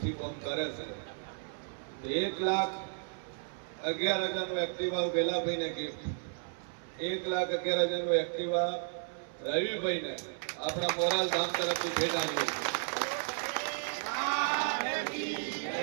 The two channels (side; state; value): left; silent; 55 dB below the other